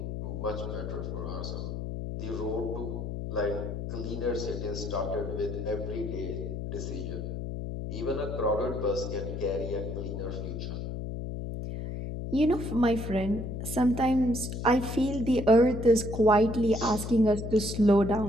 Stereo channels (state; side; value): noise; left; hum, 5 dB below the sound